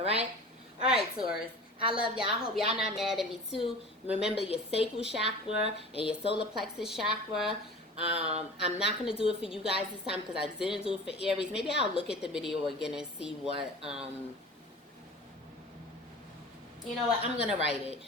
Alright, Taurus. I love y'all. I hope y'all not mad at me too. Remember your sacral chakra and your solar plexus chakra. I'm not going to do it for you guys this time because I didn't do it for Aries. Maybe I'll look at the video again and see what, you know what, I'm going to write it.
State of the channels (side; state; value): both; normal; correlation 0.38